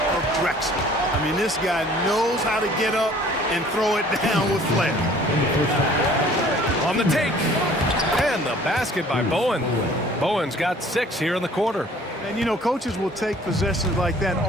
of Drexler. I mean, this guy knows how to get up and throw it down with flair. On the take. And the basket by Bowen. Bowen's got 6 here in the quarter. And, you know, coaches will take possessions like that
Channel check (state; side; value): normal; both; correlation 0.53